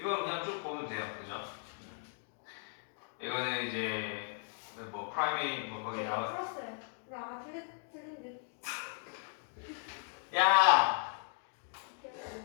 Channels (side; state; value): right; silent; 53 dB below the other